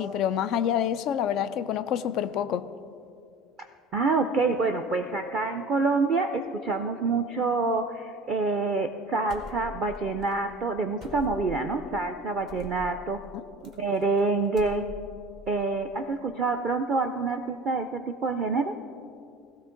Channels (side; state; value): both; normal; correlation 0.40